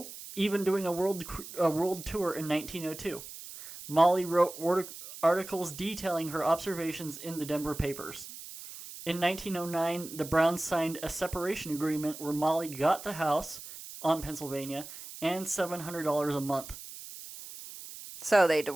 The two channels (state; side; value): noise; right; hiss, 13 dB below the sound